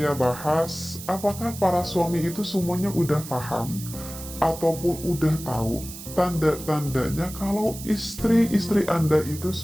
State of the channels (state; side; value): noise; right; hiss, 12 dB below the sound